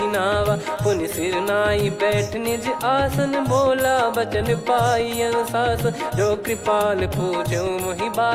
नावा। पुनि सिर नाई बैठ निज आसन बोला बचन पाई अनुशासन। जो कृपाल पूछो मोहि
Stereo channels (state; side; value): identical; both; correlation 1.00